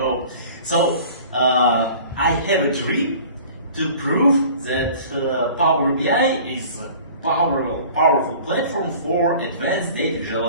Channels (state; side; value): inverted; both; correlation -0.46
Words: so. I have a dream to prove that Power BI is a powerful platform for advanced data